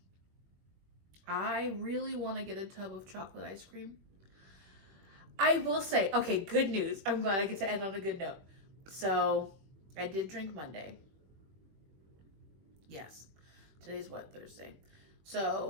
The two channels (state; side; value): late; left; 21 ms